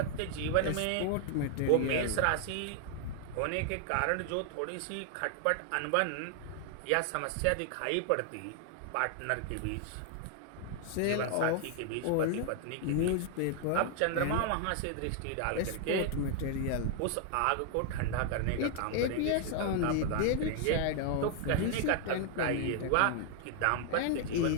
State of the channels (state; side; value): different; both; correlation 0.00